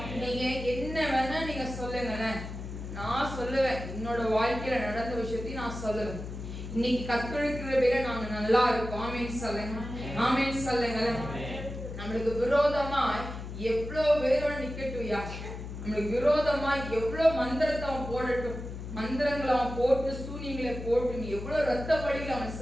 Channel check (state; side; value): noise; left; hum, 8 dB below the sound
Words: நீங்க என்ன வேணா நீங்க சொல்லுங்களேன். நான் சொல்லுவேன். என்னோட வாழ்க்கையில நடந்த விஷயத்தையும் நான் சொல்லுவேன். இன்னைக்கு கத்தெடுக்கிற பேரை நாங்க நல்லா இருக்கோம். ஆமென் சொல்லுங்க. ஆமென் சொல்லுங்களேன். நம்மளுக்கு விரோதமாய் எவ்வளவு பேரோட நிக்கட்டும்யா. நம்மளுக்கு விரோதமா எவ்வளவு மந்திரத்தை அவன் போடட்டும், மந்திரங்களை அவன் போட்டு சூனியங்களை போட்டு எவ்வளவு ரத்த பலிகளை அவன்